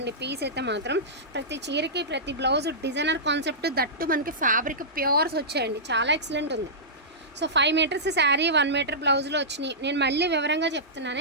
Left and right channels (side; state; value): both; normal; correlation -0.16